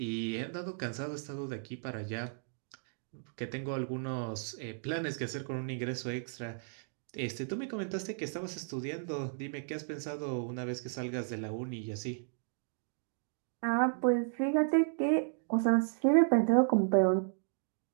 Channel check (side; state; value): left; silent; digital silence